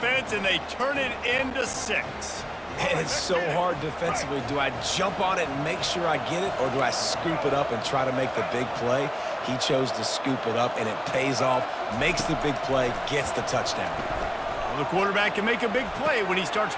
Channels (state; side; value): identical; both; correlation 1.00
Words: and they turn it into 6. And it's so hard defensively. Do I jump on it and make sure I get it, or do I scoop it up and try to make the big play? He chose to scoop it up, and it pays off, makes the big play, gets the touchdown. Well, the quarterback can make a big play when he starts